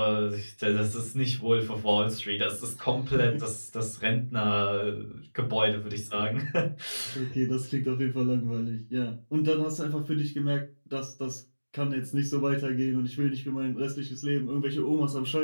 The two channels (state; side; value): inverted; both; correlation -1.00